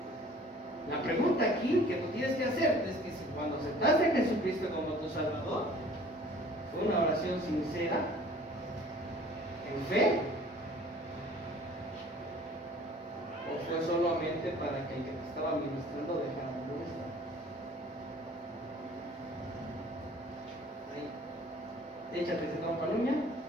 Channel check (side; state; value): both; normal; correlation 0.50